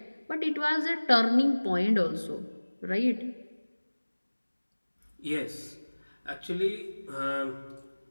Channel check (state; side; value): inverted; both; correlation -1.00